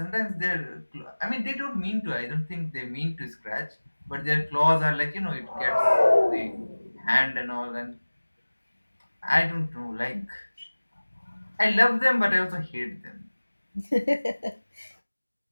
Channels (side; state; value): both; inverted; correlation -1.00